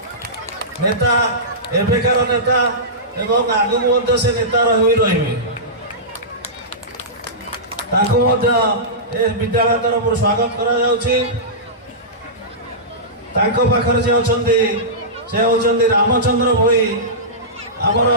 ନେତା, ଏବେକାର ନେତା ଏବଂ ଆଗକୁ ମଧ୍ୟ ସେ ନେତା ରହିବେ। ତାଙ୍କୁ ମଧ୍ୟ ଏ ବିଦ୍ୟାଳୟ ତରଫରୁ ସ୍ୱାଗତ କରାଯାଉଛି। ତାଙ୍କ ପାଖରେ ଯେ ଅଛନ୍ତି ସେ ହେଉଛନ୍ତି ରାମଚନ୍ଦ୍ର ଭୋଇ, ଆମର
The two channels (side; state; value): both; normal; correlation -0.18